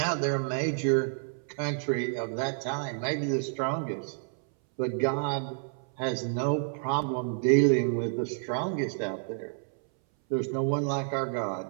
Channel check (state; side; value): silent; left; 58 dB below the other